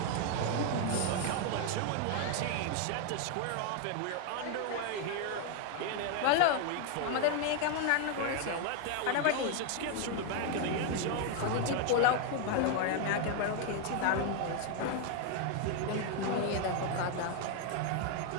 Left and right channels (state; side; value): different; both; correlation 0.01